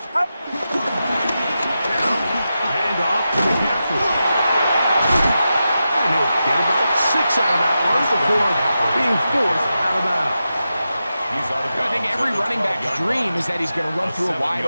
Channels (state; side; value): inverted; both; correlation -0.90